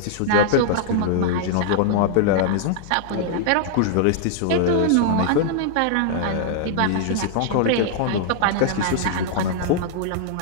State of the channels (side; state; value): both; different; correlation -0.01